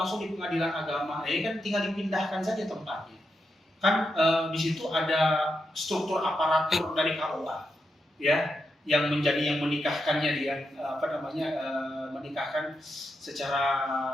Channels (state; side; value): normal; both; correlation 0.85